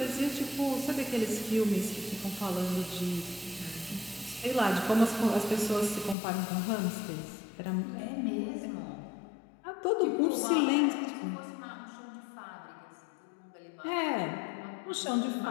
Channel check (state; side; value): drops out; right; at 6.2 s